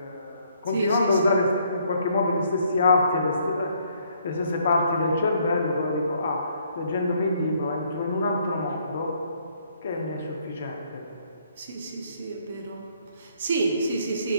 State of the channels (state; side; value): inverted; both; correlation -0.67